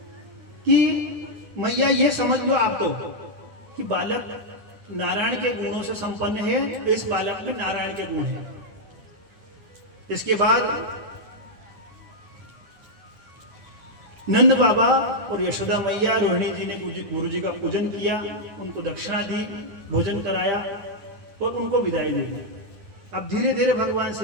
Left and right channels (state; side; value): late; left; 9.6 ms